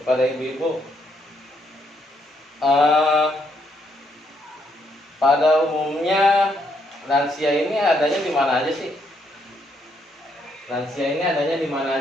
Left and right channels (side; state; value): both; normal; correlation 0.74